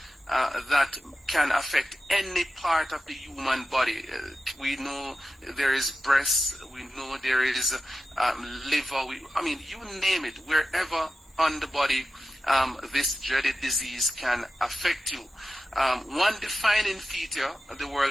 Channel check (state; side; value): normal; both; correlation 0.93